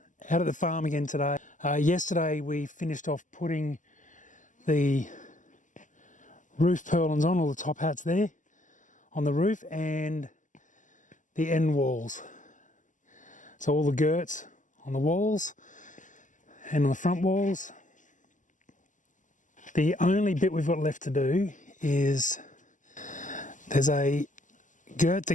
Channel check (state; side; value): late; right; 0.37 ms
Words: Out at the farm again today. Yesterday we finished off putting the roof purlins on, all the top hats there on the roof, and the end walls. So all the girts on the walls and on the front walls. The only bit we've got left to do is there's a girt